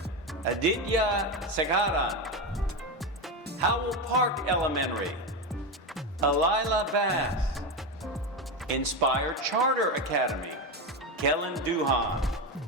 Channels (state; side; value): normal; both; correlation 0.14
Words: Aditya Segaran. Howell Park Elementary, Alila Bass. Inspire Charter Academy, Kellen Duhan.